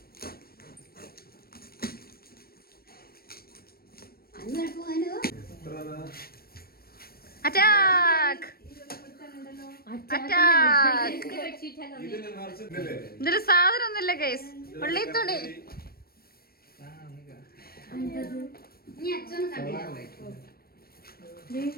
Attack attack. ഇതില് സാധനം ഒന്നുമില്ല ഗൈസ്, ഉള്ളി തുണി.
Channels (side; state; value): right; late; 0.44 ms